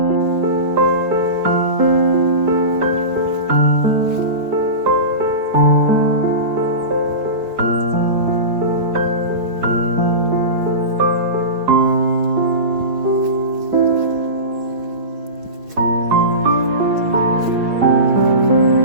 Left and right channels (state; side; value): late; left; 4.7 ms